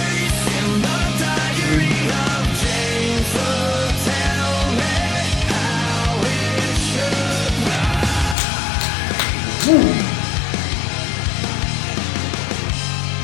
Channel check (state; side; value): drops out; right; at 8.3 s